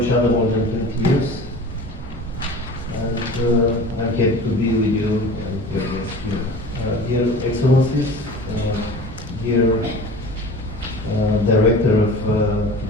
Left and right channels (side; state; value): both; normal; correlation 0.39